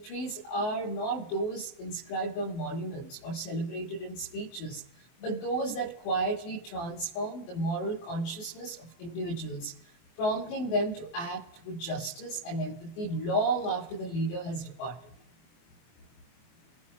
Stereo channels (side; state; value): right; late; 24 ms